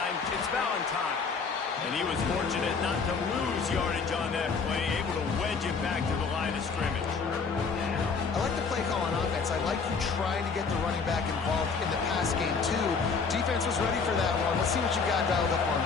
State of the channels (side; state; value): right; quieter; 5.1 dB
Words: It's Valentine. And he was fortunate not to lose yardage on that play, able to wedge it back to the line of scrimmage. I like the play call on offense. I like you trying to get the running back involved in the pass game, too. Defense was ready for that one. Let's see what you got dialed up on